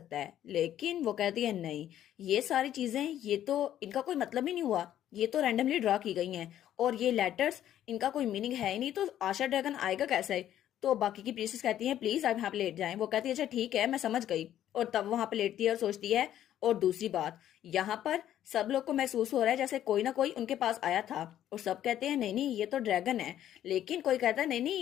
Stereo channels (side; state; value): right; quieter; 11.5 dB